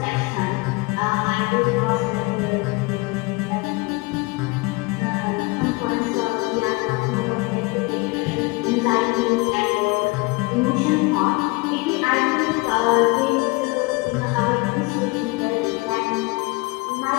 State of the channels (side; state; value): right; quieter; 25.2 dB